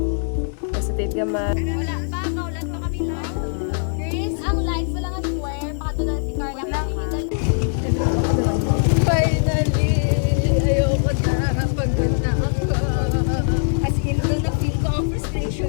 Positive gamay. Wala pa, kaulan pa kami live. Chris, ang live wala nga square, pakatulan si Carla. Finally! Ayoko na. Pagod na ako. As in, doon na-feel ko ang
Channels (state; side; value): silent; right; 65 dB below the other